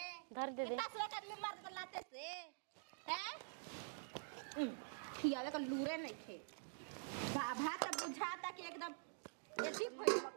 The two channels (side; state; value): left; silent; digital silence